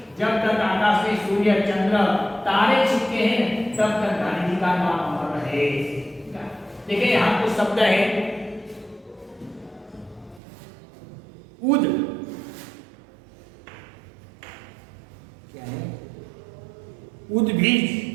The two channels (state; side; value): drops out; left; at 10.4 s